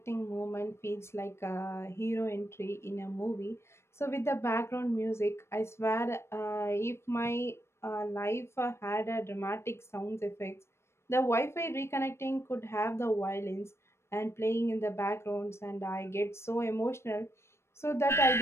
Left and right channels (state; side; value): late; right; 0.13 ms